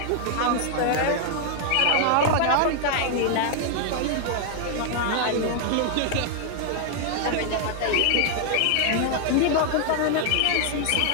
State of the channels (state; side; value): different; both; correlation 0.00